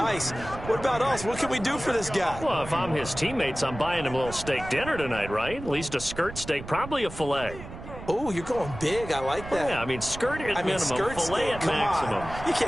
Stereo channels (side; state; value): right; noise; rumble, 12 dB below the sound